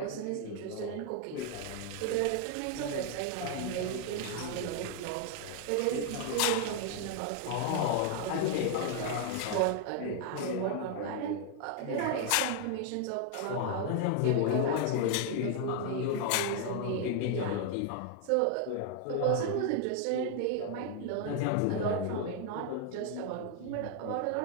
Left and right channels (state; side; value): different; both; correlation 0.00